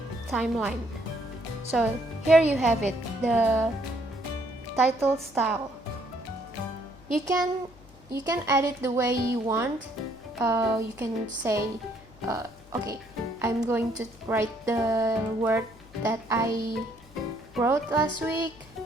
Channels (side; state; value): left; noise; hum, 24 dB below the sound